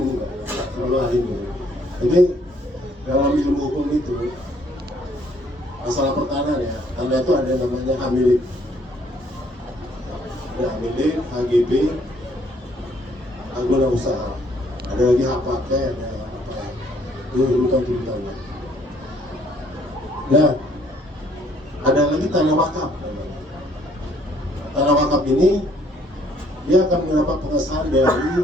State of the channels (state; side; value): normal; both; correlation 0.64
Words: enggak terlalu ahli hukum. Jadi dalam ilmu hukum itu masalah pertahanan ya, karena itu ada namanya hamilik. Ada hamilik, HGB, hak guna usaha. Ada lagi hak pakai, ada apa? Itu urutan-urutannya. Nah, ada lagi tanah wakaf. Tanah wakaf ini dia akan mendapat pengesahan